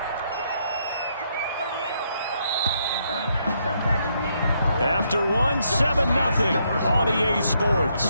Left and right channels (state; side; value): inverted; both; correlation -0.75